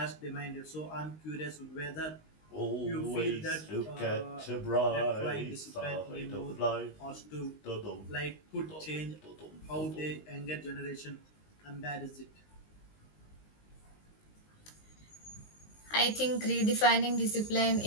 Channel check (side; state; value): right; late; 19 ms